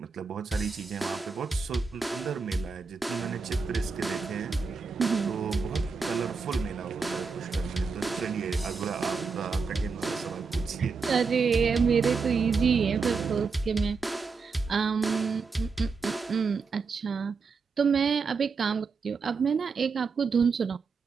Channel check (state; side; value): quieter; left; 4.9 dB